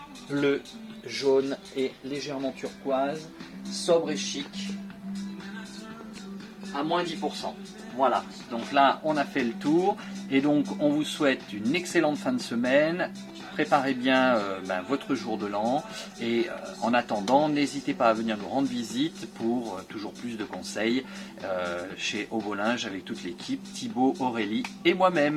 bleu, jaune et légèrement turquoise, sobre et chic, à moins 10%. Voilà, donc là on a fait le tour et donc on vous souhaite une excellente fin de semaine. Préparez bien votre jour de l'an et en attendant, n'hésitez pas à venir nous rendre visite pour toujours plus de conseils chez Ovolinge avec toute l'équipe, Thibaut, Aurélie et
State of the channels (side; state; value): both; identical; correlation 1.00